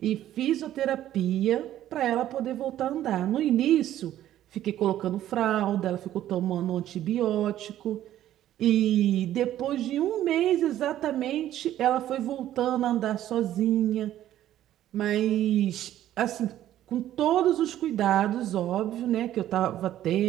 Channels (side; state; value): left; quieter; 12.5 dB